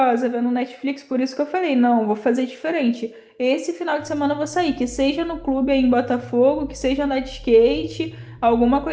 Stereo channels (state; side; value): identical; both; correlation 1.00